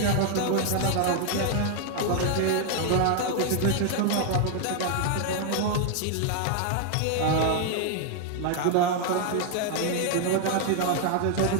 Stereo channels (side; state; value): both; different; correlation 0.00